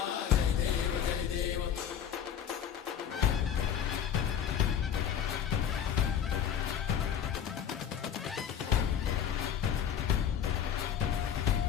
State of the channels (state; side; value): quieter; right; 8.7 dB